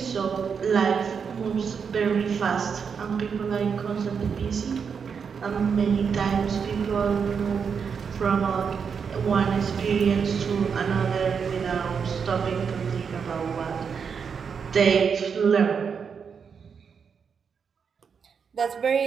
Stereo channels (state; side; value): quieter; left; 6.4 dB